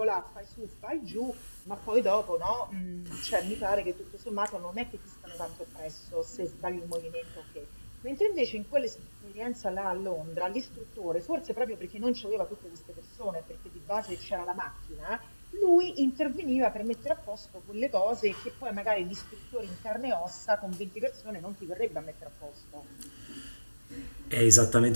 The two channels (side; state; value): both; inverted; correlation -1.00